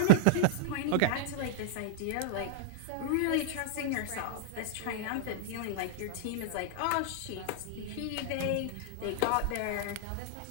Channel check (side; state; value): both; different; correlation -0.01